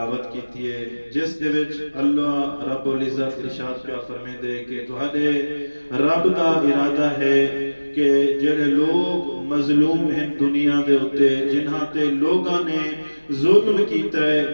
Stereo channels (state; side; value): inverted; both; correlation -1.00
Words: کیتی ہے جس دے وچ اللہ رب العزت ارشاد پیا فرمیندے کہ تہاڈے رب دا ارادہ ہے کہ جڑے لوگ مظلوم ہیں دنیا دے اوتے جنہاں تے لوگاں نے ظلم کیتا